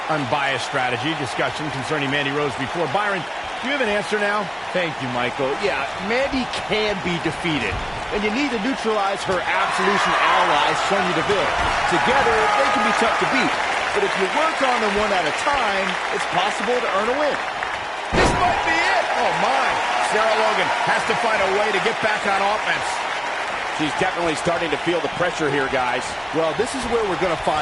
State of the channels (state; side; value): identical; both; correlation 1.00